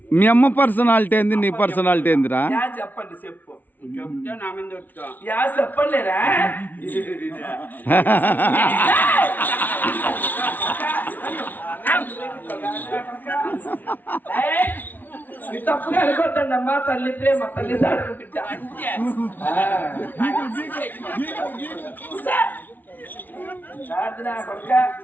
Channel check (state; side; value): late; right; 0.084 ms